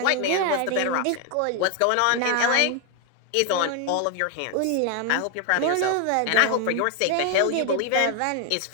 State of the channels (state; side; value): different; both; correlation 0.01